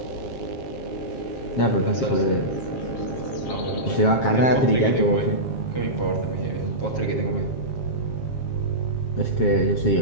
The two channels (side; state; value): right; late; 7.4 ms